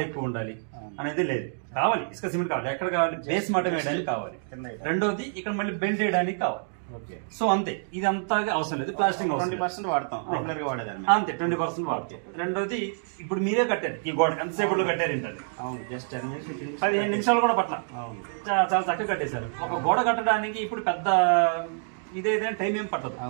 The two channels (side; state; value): left; silent; digital silence